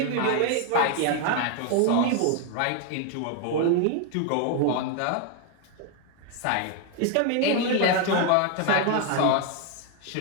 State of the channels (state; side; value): different; both; correlation 0.01